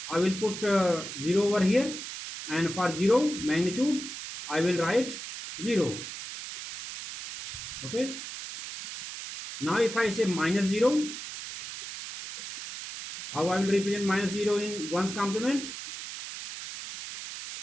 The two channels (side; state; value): right; noise; hiss, 9 dB below the sound